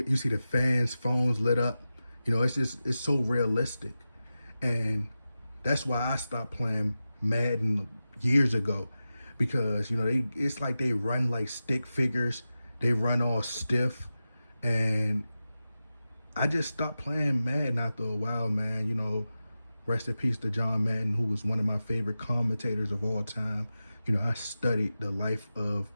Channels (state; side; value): inverted; both; correlation -0.93